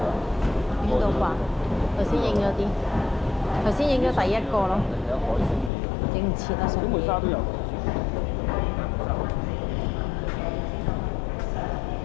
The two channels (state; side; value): drops out; right; at 5.7 s